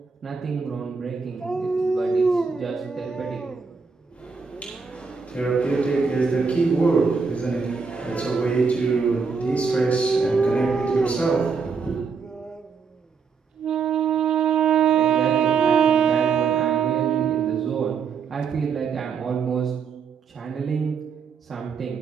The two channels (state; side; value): quieter; left; 5.5 dB